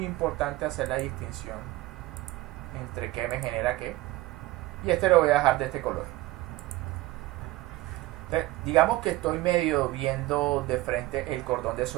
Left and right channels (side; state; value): left; quieter; 18.5 dB